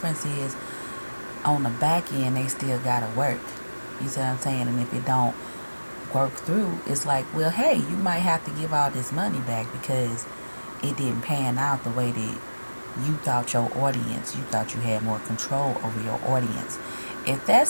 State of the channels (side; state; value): both; inverted; correlation -1.00